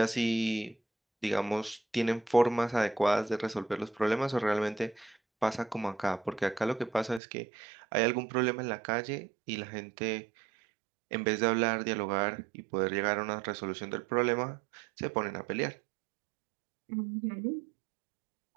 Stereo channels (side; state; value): left; drops out; at 7.2 s